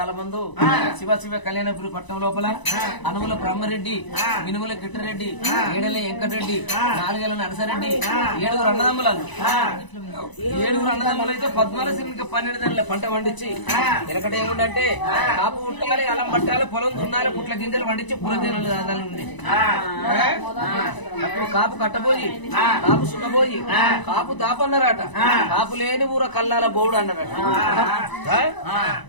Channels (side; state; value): right; late; 1.0 ms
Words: శివ శివ కళ్యాణపురి పట్టణం లోపల అనుముల బ్రహ్మరెడ్డి, మినుముల కిట్టరెడ్డి, ఏడల వెంకటరెడ్డి, నాలుగేళ్ల నరసరెడ్డి, 7 అన్నదమ్ములను 7 అన్నదమ్ములు అయితే 14 12 పంట పండించి ఎనకట ఏముందంటే కాపు పుట్టాలి, అలం పట్టాలి, పొలం దున్నాలి, పుట్ల గింజలు పండించి పురదేనులు దాదాలు ఉండే. అప్పుడు కాపు కట్టబోయి, కాపు సున్నబోయి, కాపు దాపన్నారట. కాపు లేని ఊర కల్లాల బోవుడు అన్నారట.